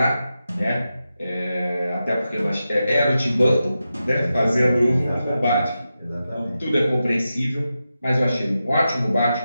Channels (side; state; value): both; inverted; correlation -0.90